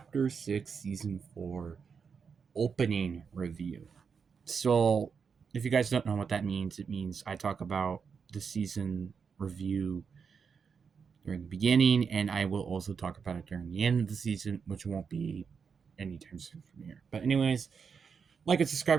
6, Season 4 opening review. So, if you guys don't know what that means, it means I talk about the season review during the beginning, and I will also talk about it during the end of the season, which won't be anytime soon from here. But, anyways, like and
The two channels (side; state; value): left; quieter; 6.1 dB